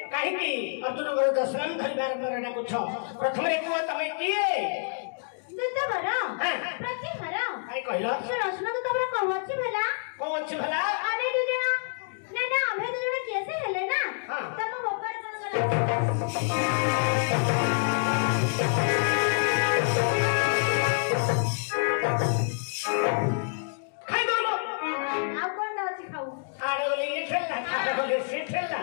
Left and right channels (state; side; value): silent; right; digital silence